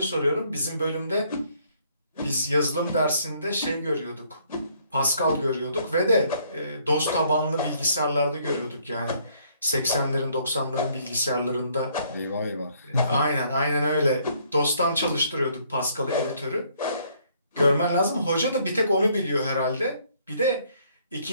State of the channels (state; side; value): inverted; both; correlation -0.66